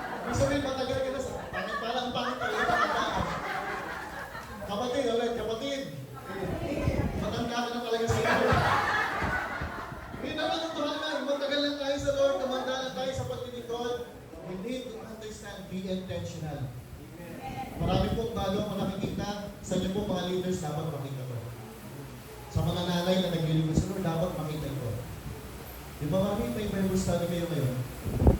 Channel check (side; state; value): both; identical; correlation 1.00